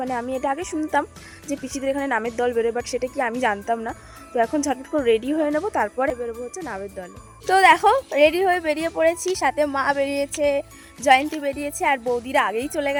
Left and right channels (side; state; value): both; identical; correlation 1.00